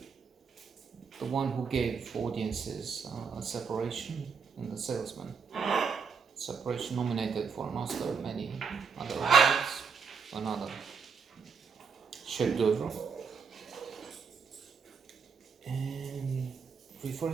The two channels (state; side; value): quieter; left; 5.8 dB